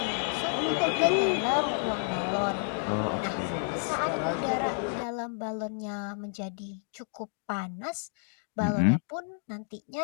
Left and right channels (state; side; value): silent; right; 58 dB below the other